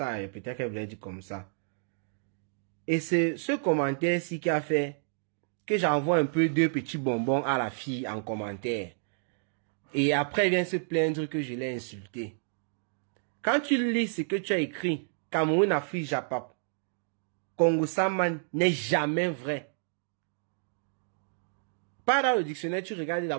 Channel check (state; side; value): silent; left; digital silence